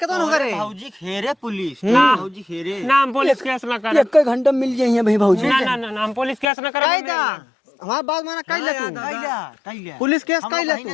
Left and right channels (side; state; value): right; drops out; at 6.5 s